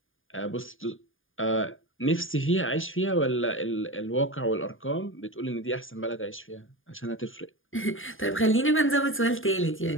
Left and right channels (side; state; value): right; late; 0.59 ms